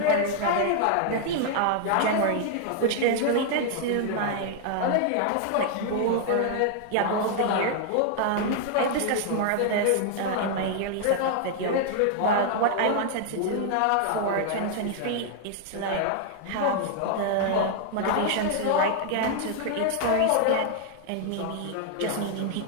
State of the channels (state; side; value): different; both; correlation 0.00